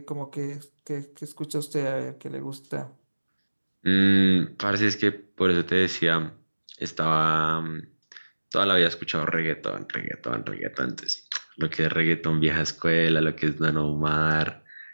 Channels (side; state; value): both; inverted; correlation -1.00